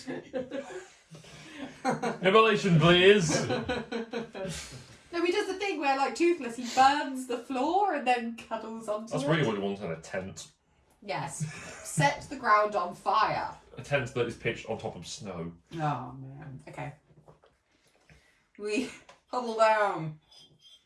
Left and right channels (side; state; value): both; identical; correlation 1.00